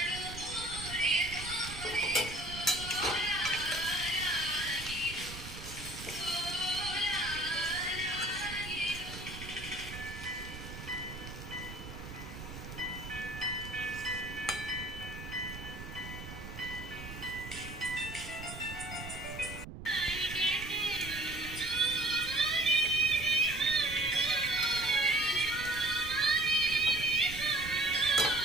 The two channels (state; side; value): noise; right; rumble, 11 dB below the sound